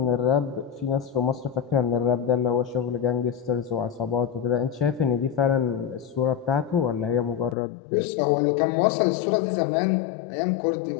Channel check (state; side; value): drops out; right; at 7.6 s